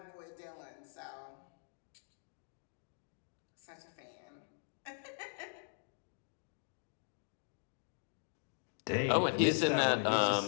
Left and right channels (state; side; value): silent; right; digital silence